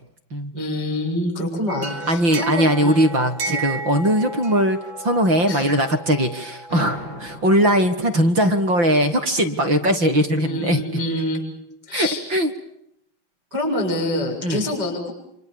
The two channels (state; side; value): late; left; 5.8 ms